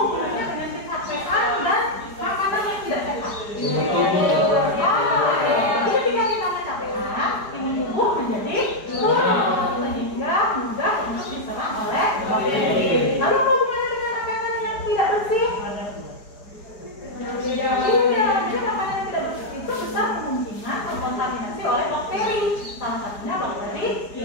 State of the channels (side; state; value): right; late; 4.9 ms